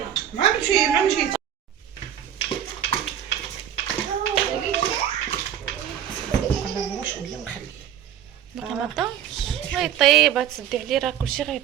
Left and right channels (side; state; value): left; quieter; 10.1 dB